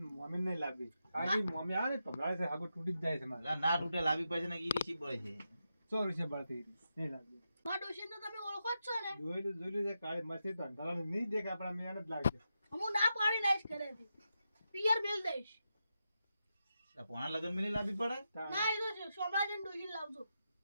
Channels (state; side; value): inverted; both; correlation -0.87